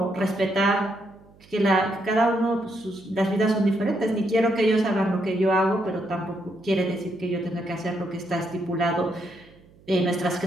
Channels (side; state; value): right; noise; hum, 27 dB below the sound